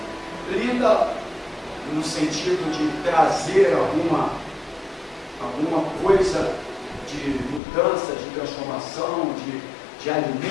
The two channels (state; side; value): drops out; right; at 7.6 s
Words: linda no sentido de trazer alguma coisa de mudança, de transformação, de